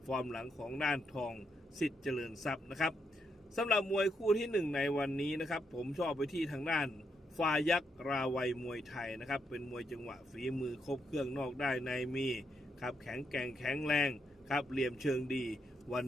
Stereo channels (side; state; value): both; normal; correlation 0.80